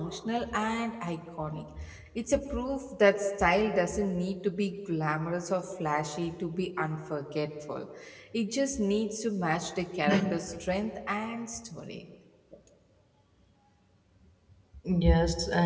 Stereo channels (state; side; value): identical; both; correlation 1.00